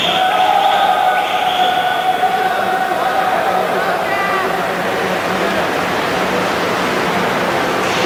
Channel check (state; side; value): identical; both; correlation 1.00